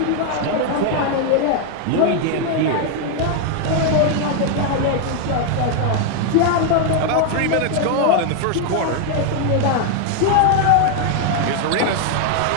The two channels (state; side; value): different; both; correlation 0.00